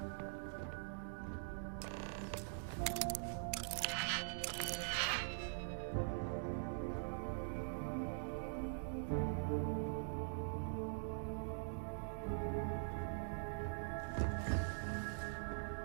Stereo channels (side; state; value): left; silent; digital silence